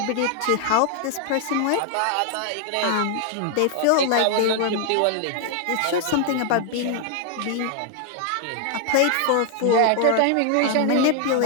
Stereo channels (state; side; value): different; both; correlation 0.00